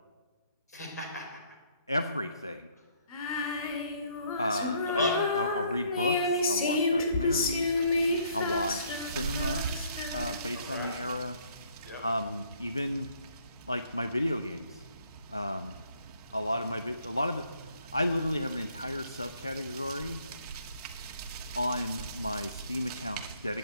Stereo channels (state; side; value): inverted; both; correlation -0.64